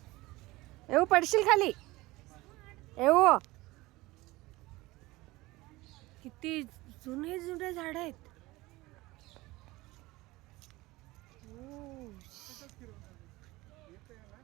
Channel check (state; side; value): quieter; left; 20.1 dB